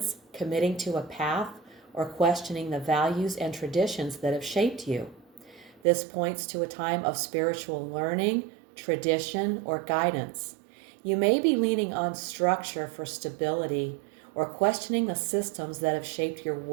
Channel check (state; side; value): drops out; left; at 5.8 s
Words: committing to a path, or questioning the values and traditions that have shaped you. This points to a time of spiritual learning, tradition, or guidance. You may be leaning on structure for stability or questioning the systems that have shaped your